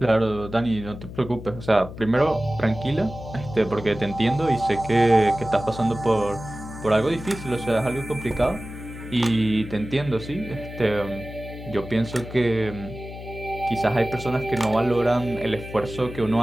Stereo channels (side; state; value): left; noise; hum, 12 dB below the sound